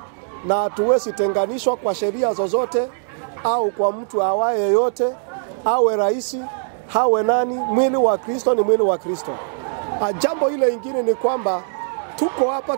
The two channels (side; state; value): left; silent; digital silence